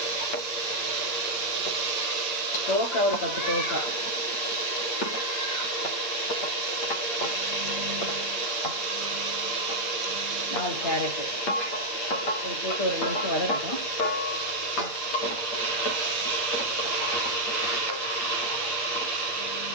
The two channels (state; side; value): late; right; 8.7 ms